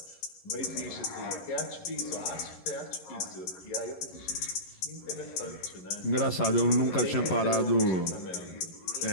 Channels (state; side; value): late; right; 11 ms